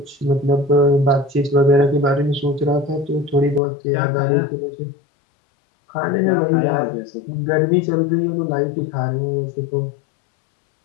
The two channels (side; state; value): right; drops out; at 3.6 s